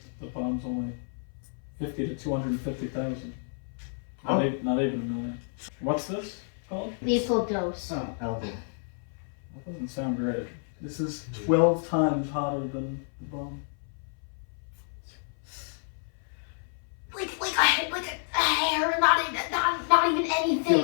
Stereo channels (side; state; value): right; silent; 58 dB below the other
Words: the bomb's only 50 to 250,000. Oh. Not even a million. What's this called? Lethal dose. Oh. Alvin. That doesn't sound great. This is 12 times hotter than the bomb. Like a hair, not even